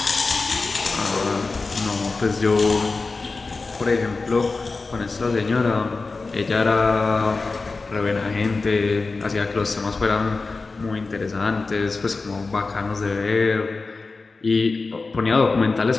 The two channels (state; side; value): quieter; right; 3.9 dB